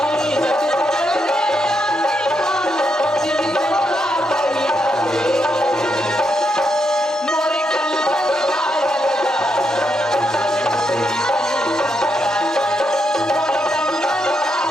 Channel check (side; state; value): both; normal; correlation 0.80